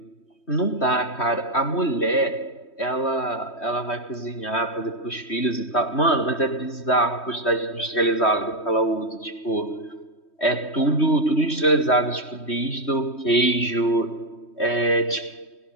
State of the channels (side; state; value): right; late; 3.2 ms